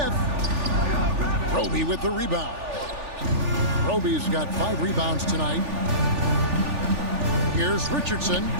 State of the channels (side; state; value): left; late; 3.4 ms